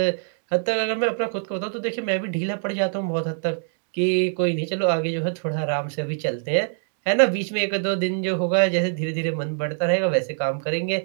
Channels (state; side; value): silent; left; digital silence